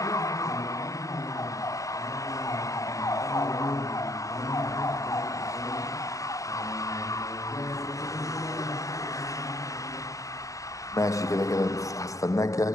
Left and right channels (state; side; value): late; right; 0.16 ms